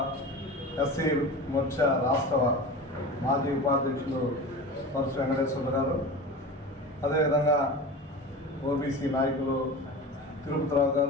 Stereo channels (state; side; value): normal; both; correlation 0.32